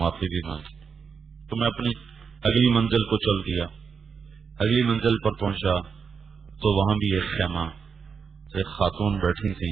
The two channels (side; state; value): left; quieter; 6.0 dB